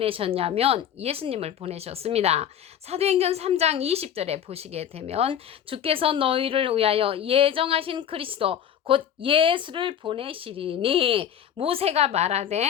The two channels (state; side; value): quieter; right; 9.4 dB